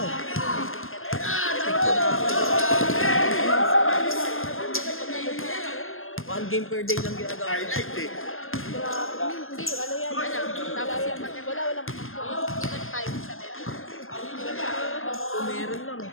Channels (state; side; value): late; right; 0.60 ms